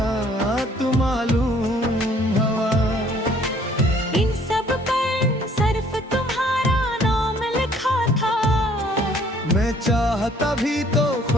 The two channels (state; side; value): normal; both; correlation 0.59